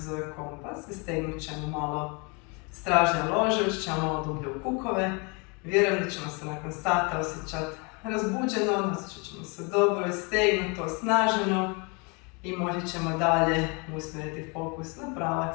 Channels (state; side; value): quieter; right; 31.5 dB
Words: zove kompas i stegnut ćemo malo stražnje lože, ući ćemo malo dublje u kukove. Vjerujem da ćemo se nakon sata osjećati razbuđeno, osjećat ćemo se dobro i stegnuto, osnaženo i moći ćemo dalje usmjeriti fokus na